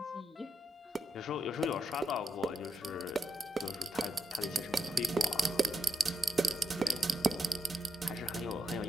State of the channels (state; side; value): normal; both; correlation 0.83